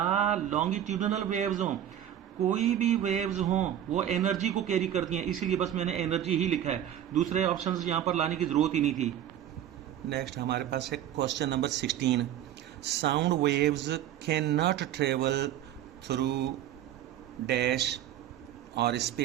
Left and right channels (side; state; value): left; quieter; 11.0 dB